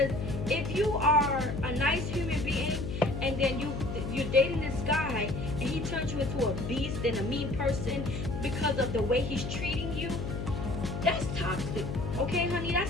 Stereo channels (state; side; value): noise; left; hum, 4 dB below the sound